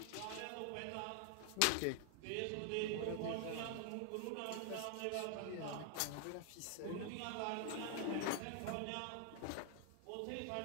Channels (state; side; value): different; both; correlation 0.00